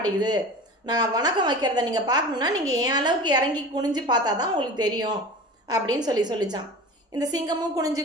நான் வணக்கம் வைக்கிறத நீங்கள் பார்க்கணுன்னா நீங்கள் என் அளவுக்கு இறங்கி குனிஞ்சு பார்த்தா தான் உங்களுக்கு தெரியும் அப்படின்னு சொல்லிச்சான். இந்த சிங்கமும் குனிஞ்சு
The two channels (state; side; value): normal; both; correlation 0.35